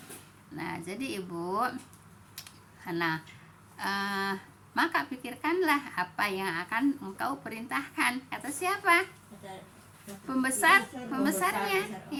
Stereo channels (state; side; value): identical; both; correlation 1.00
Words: Nah, jadi Ibu, maka pikirkanlah apa yang akan engkau perintahkan, kata siapa? Pembesarnya